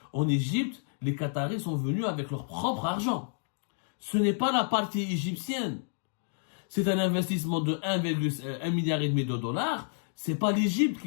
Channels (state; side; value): silent; right; digital silence